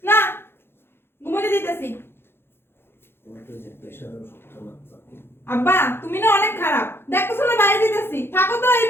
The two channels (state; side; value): late; right; 0.11 ms